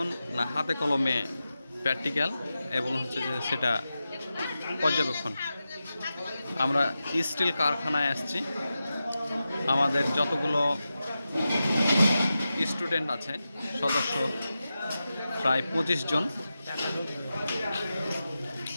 না হাতে কলমে প্র্যাকটিক্যাল, এবং হচ্ছে যে সেটা পর্যবেক্ষণ। আমরা স্টিল কারখানায় আসছি। আমাদের যতগুলো স্টুডেন্ট আছে, সদস্য প্রায় 25 জন।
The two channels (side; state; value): both; inverted; correlation -0.92